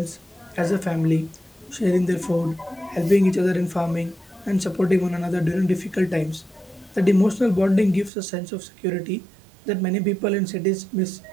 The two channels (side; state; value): left; drops out; at 8.1 s